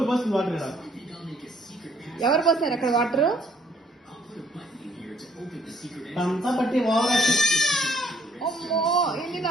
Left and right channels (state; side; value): normal; both; correlation 0.64